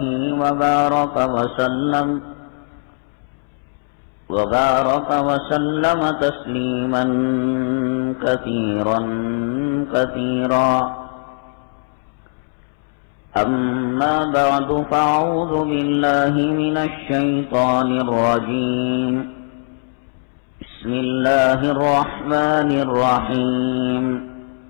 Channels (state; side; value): silent; right; 66 dB below the other